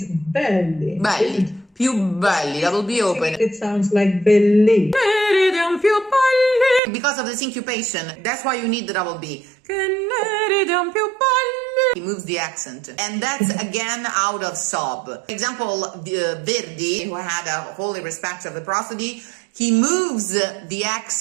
belli. Belli. Più belli, that will be open. It sounds like belli. Because of the syncopation, that's why you need the double B. He moves the accent. And that's again out of sob. For example, Verdi, who had a holy respect of the prosody, he moves the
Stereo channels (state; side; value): drops out; left; at 6.8 s